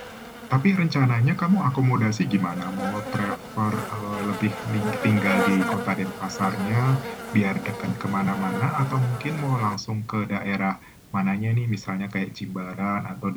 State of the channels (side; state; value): both; identical; correlation 1.00